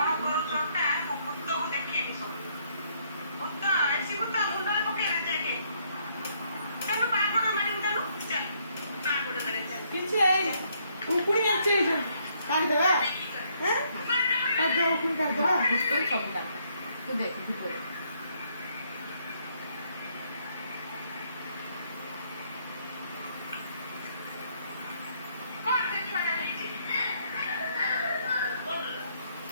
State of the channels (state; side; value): inverted; both; correlation -0.70